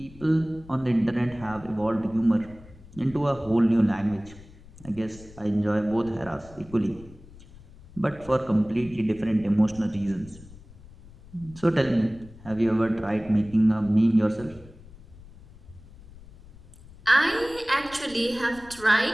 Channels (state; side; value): noise; left; rumble, 21 dB below the sound